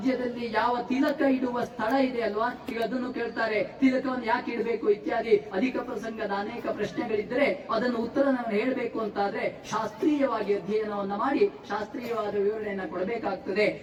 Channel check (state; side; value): identical; both; correlation 1.00